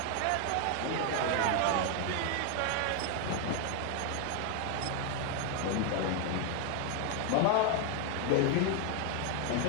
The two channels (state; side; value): different; both; correlation 0.00